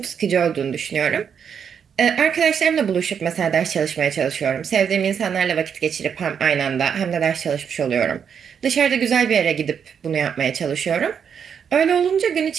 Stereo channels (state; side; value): quieter; left; 7.4 dB